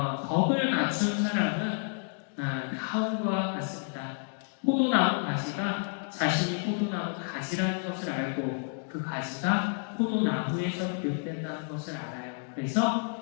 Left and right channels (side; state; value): right; silent; 58 dB below the other